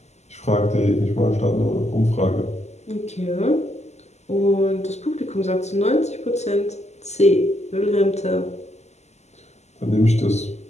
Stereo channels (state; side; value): late; right; 0.33 ms